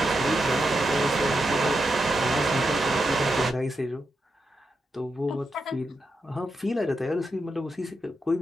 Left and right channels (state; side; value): normal; both; correlation 0.86